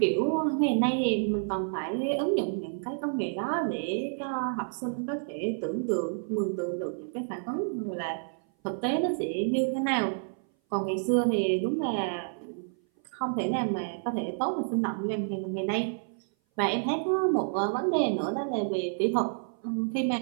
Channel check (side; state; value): left; silent; 57 dB below the other